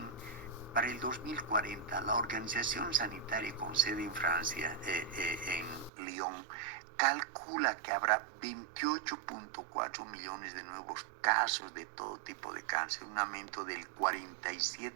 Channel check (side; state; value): left; drops out; at 5.9 s